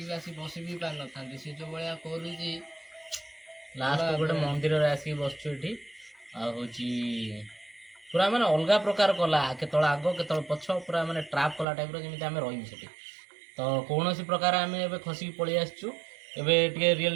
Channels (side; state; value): left; drops out; at 11.7 s